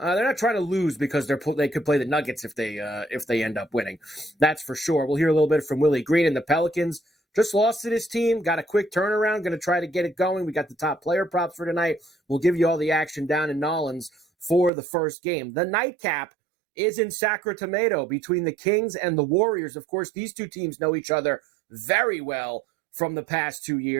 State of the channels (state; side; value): drops out; left; at 14.7 s